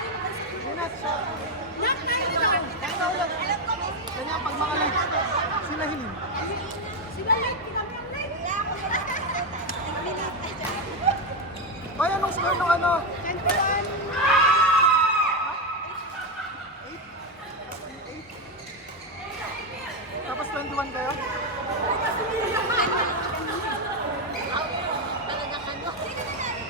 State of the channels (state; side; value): normal; both; correlation 0.07